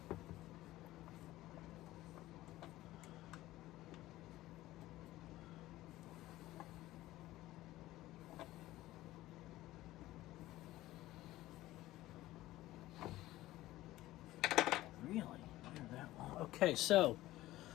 Really? That long. Okay, so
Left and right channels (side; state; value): right; quieter; 16.3 dB